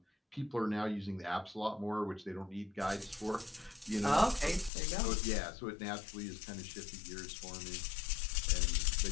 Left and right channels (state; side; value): drops out; right; at 4.7 s